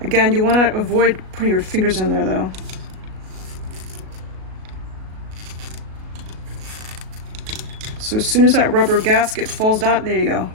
Again, you want to avoid putting your fingers in there though. So as soon as that rubber gasket falls down, there you go.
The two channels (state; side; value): late; left; 37 ms